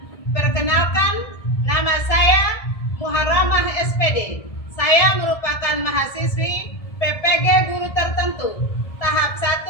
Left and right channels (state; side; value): late; right; 1.7 ms